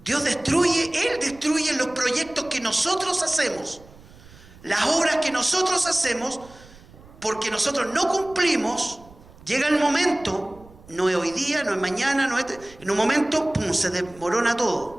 Él destruye los proyectos que nosotros hacemos, las obras que nosotros hacemos, porque nosotros no cumplimos. Llega el momento, no es hoy día, no es mañana, en un momento, ¡pum!, se desmorona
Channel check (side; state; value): right; noise; rumble, 23 dB below the sound